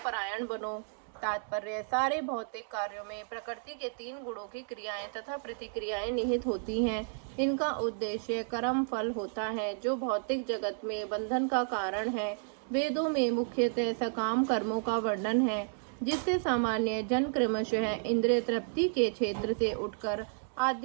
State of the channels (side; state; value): left; silent; digital silence